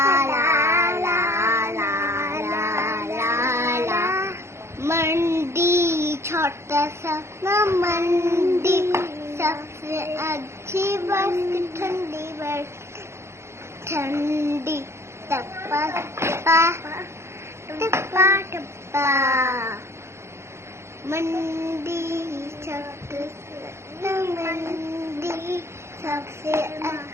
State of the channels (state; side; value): late; left; 0.13 ms